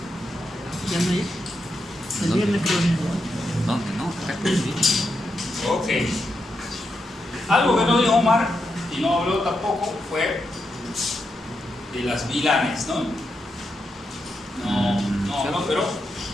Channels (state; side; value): normal; both; correlation 0.84